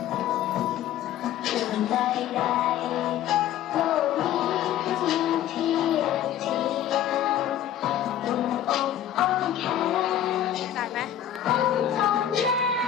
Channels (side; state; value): right; quieter; 10.9 dB